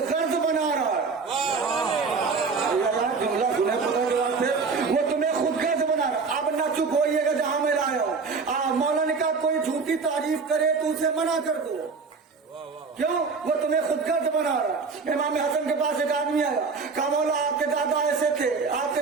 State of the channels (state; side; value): quieter; left; 4.8 dB